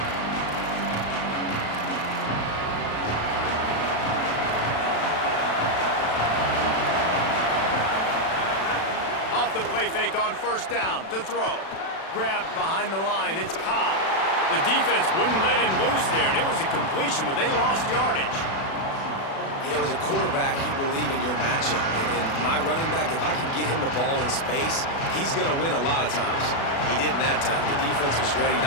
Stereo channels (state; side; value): late; right; 36 ms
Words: Off the play fake on first down to throw. Grabbed behind the line. It's Cobb. The defense wouldn't let him loose there, and it was a completion, but they lost yardage. You know, as a quarterback, you believe in your matchup. And my running back, if I can get him the ball in space, he's going to win a lot of times. He didn't that time. The defense was ready.